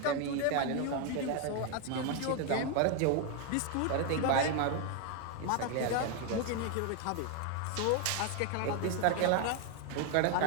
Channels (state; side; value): different; both; correlation 0.01